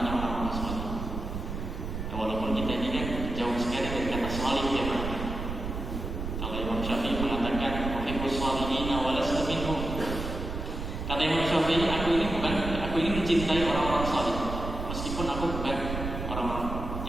orang-orang salih. Ya, walaupun kita ini kan jauh sekali dari kata salih ya Pak. Kalau Imam Syafi'i mengatakan uhibbus shalihina wa lastu minhum. Kata Imam Syafi'i, aku ini mencintai orang-orang salih, meskipun aku bukan orang-orang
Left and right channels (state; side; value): noise; right; rumble, 5 dB below the sound